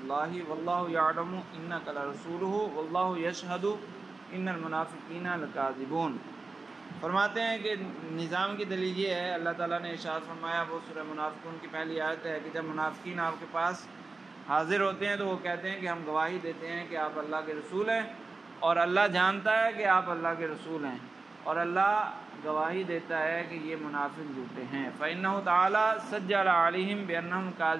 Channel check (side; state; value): left; quieter; 3.8 dB